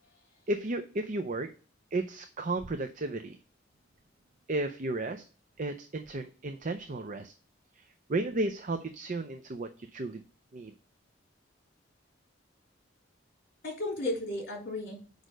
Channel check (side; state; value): both; normal; correlation 0.31